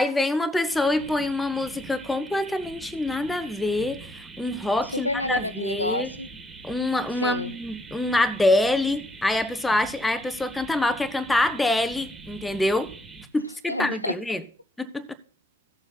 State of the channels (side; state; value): both; normal; correlation 0.73